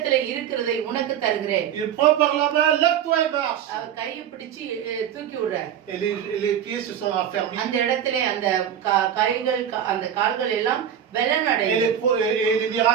இருக்கிறதை உனக்கு தருகிறேன். Il prend par la main, lève-toi et marche. அவர் கையை பிடிச்சு தூக்கி விடுறார். Et les pieds se sont affermis. அந்த இடத்திலே அந்த கைகள் அந்த கால்கள் எல்லாம் Et les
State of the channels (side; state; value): left; quieter; 9.4 dB